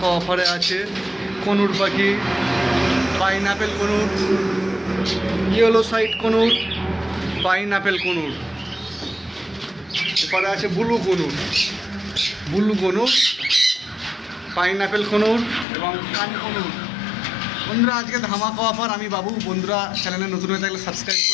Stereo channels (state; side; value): drops out; right; at 15.7 s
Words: অফারে আছে। কনুর পাখি, pineapple conure, yellow side conure, pineapple conure. এরপরে আছে ব্লু কনুর, পাইনঅ্যাপেল কনুর এবং কান কনুর। বন্ধুরা, আজকে ধামাকা অফার আমি বাবু। বন্ধুরা, চ্যানেলে নতুন হয়ে থাকলে সাবস্ক্রাইব